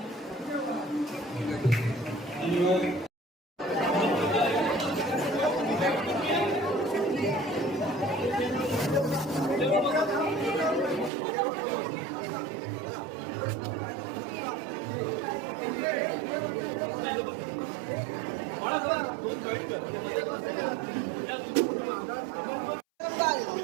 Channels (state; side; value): drops out; left; at 11.1 s